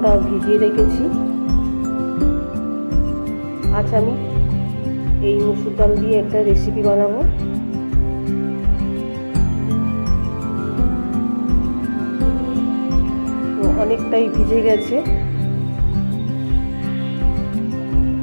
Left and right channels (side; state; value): both; inverted; correlation -1.00